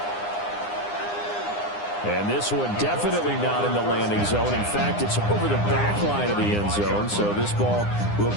And this one definitely not in the landing zone. In fact, it's over the back line of the end zone, so this ball will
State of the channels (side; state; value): right; late; 9.8 ms